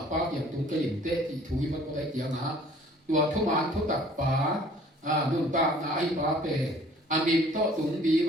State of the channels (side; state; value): both; normal; correlation 0.53